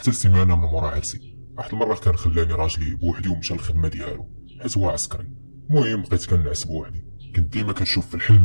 السيمانه من مورا عرسي. واحد المره كان خلاني راجلي بوحدي ومشى للخدمه ديالو حيت هو عسكري. المهم بقيت كنعس بوحدي، كنت ديما كنشوف في الحلم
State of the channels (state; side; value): inverted; both; correlation -1.00